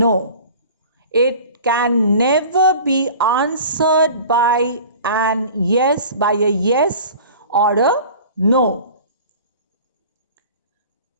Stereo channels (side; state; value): both; inverted; correlation -0.42